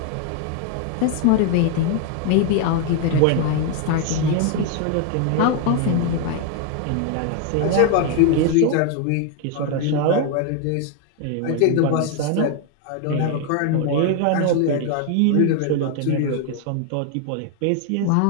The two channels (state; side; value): different; both; correlation 0.01